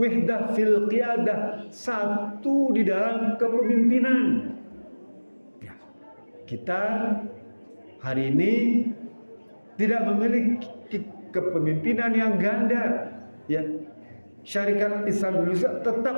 fil qiyadah, satu di dalam kepemimpinan. Ya. Kita hari ini tidak memiliki kepemimpinan yang ganda, ya. Syarikat Islam Indonesia tetap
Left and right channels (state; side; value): inverted; both; correlation -1.00